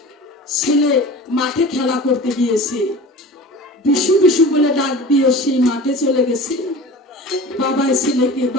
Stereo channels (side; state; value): both; normal; correlation 0.37